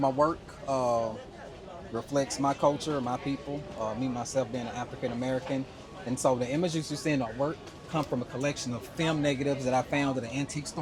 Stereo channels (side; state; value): both; identical; correlation 1.00